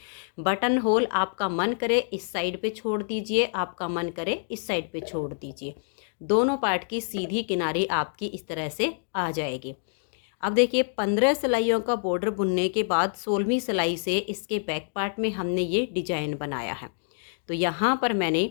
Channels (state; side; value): silent; right; digital silence